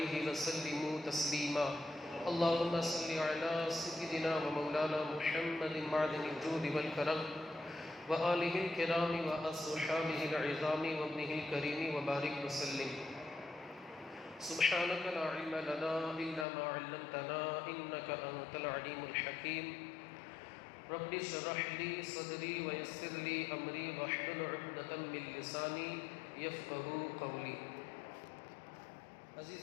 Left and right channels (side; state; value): right; drops out; at 16.4 s